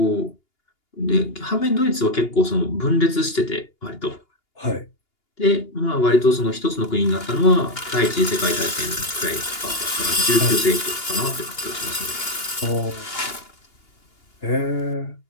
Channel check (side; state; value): right; late; 2.8 ms